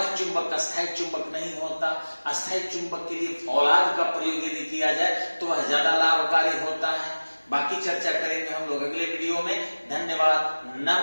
चुंबक अस्थायी चुंबक नहीं होता। अस्थायी चुंबक के लिए फौलाद का प्रयोग यदि किया जाए तो वह ज्यादा लाभकारी होता है। बाकी चर्चा करेंगे हम लोग अगले वीडियो में। धन्यवाद,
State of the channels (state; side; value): inverted; both; correlation -1.00